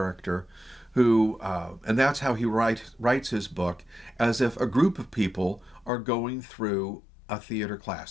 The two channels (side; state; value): right; drops out; at 5.9 s